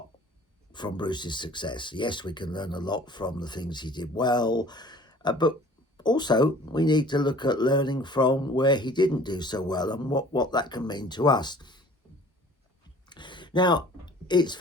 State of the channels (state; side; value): normal; both; correlation 0.49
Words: from Bruce's success. Yes, we can learn a lot from the things he did well, but also we need to look at learning from where he didn't do so well and what that can mean to us. Now, it's